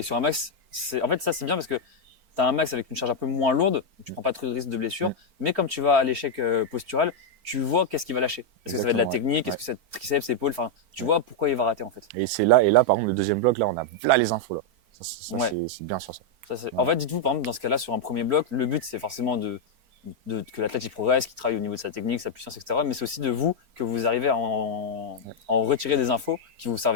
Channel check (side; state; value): left; late; 4.4 ms